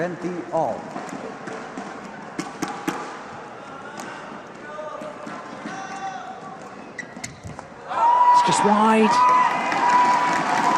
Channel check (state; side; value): identical; both; correlation 1.00